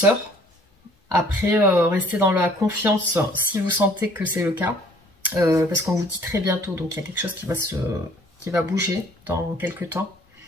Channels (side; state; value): both; normal; correlation 0.56